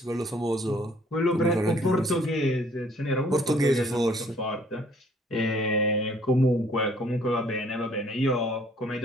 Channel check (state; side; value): normal; both; correlation 0.60